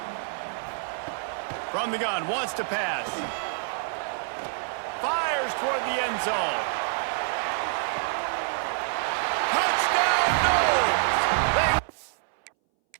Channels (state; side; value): silent; left; 60 dB below the other